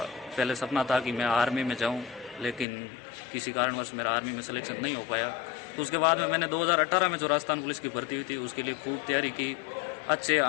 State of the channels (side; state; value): right; drops out; at 2.7 s